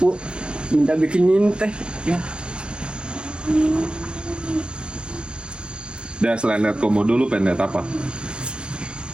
minta bikinin teh. Ya. Dan selain lihat komodo lu pengen lihat apa?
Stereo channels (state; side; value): late; left; 0.056 ms